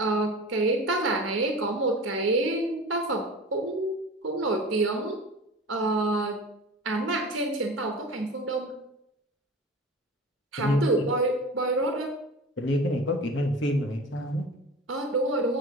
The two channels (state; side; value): normal; both; correlation 0.35